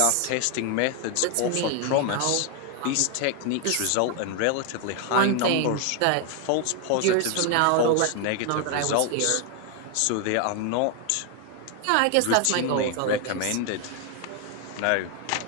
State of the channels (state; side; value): different; both; correlation 0.01